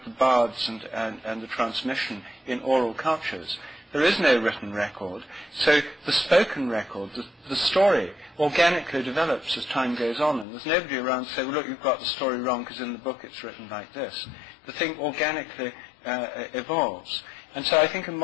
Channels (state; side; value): drops out; right; at 10.5 s